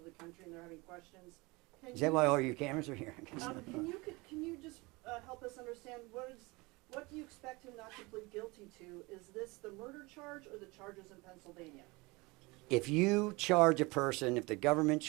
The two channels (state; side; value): quieter; left; 24.5 dB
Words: the country and they're having questions. Can Is that you why just- all your cameras are here? Can you just help us understand what do you expect him not to plead guilty to? Is this the murder charge or the charges in Pennsylvania? If you charge a person, if the government